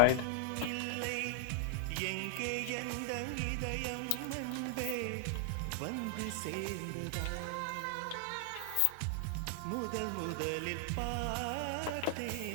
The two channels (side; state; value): both; different; correlation 0.00